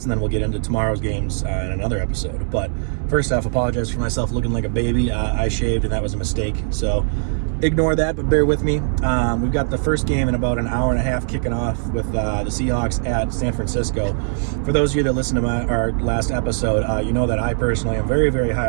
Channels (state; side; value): silent; left; digital silence